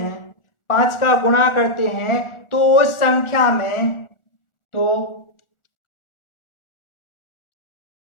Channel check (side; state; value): right; late; 1.4 ms